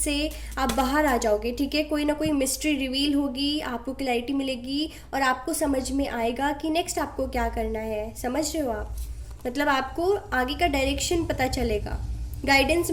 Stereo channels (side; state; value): both; identical; correlation 1.00